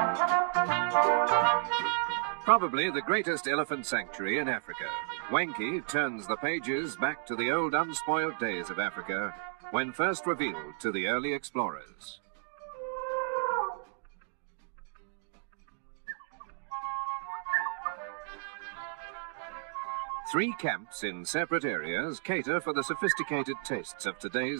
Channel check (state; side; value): silent; left; 56 dB below the other